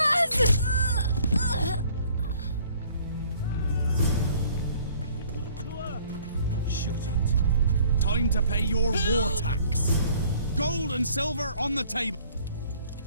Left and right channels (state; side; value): inverted; both; correlation -0.57